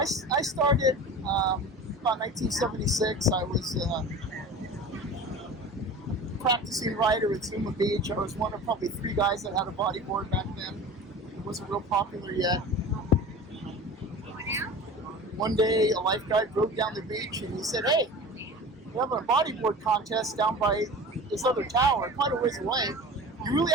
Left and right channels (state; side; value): normal; both; correlation 0.36